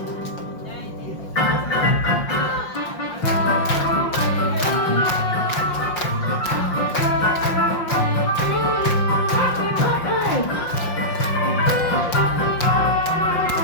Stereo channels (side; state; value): right; late; 5.7 ms